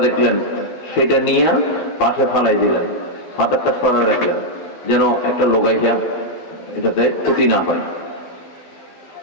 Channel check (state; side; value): late; right; 12 ms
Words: দেখলেন, সেটা নিয়ে পাশে ফালাই দিলেন, পাথরটা সরা রাখলেন, যেন একটা লোক আইসা এটাতে ক্ষতি না হয়।